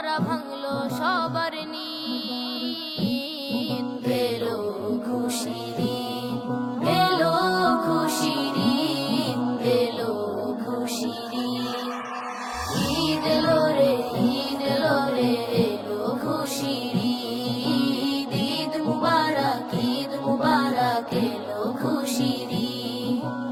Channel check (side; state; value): both; identical; correlation 1.00